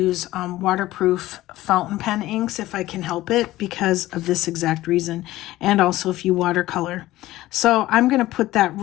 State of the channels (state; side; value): quieter; right; 16.4 dB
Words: waterproof fountain pen inks if I can help it, because of this exact reason, and also if you watercolor. So I'm going to put that